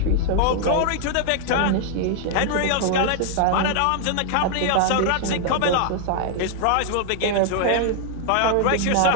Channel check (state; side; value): different; both; correlation 0.00